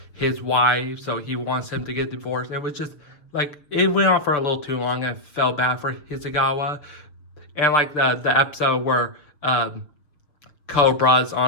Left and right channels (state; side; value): late; right; 6.4 ms